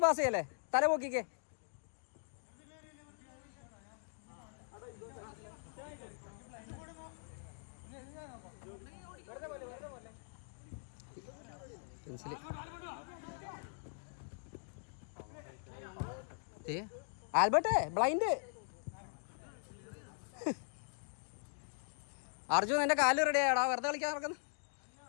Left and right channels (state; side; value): silent; right; digital silence